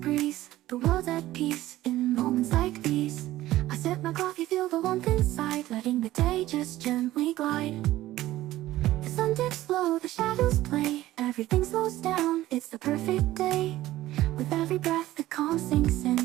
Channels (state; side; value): quieter; left; 15.5 dB